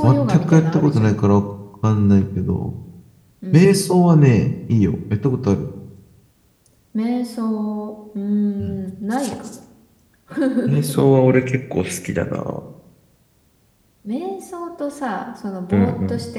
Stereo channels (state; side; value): identical; both; correlation 1.00